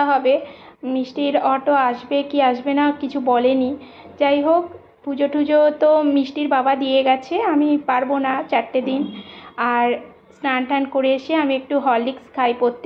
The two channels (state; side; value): identical; both; correlation 1.00